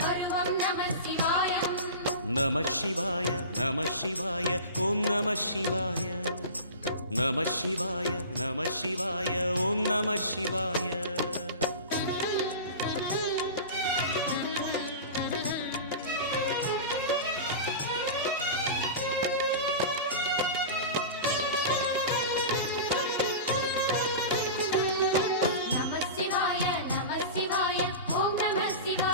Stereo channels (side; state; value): both; inverted; correlation -0.31